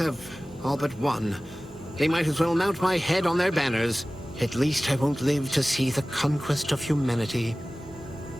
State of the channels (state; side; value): normal; both; correlation 0.97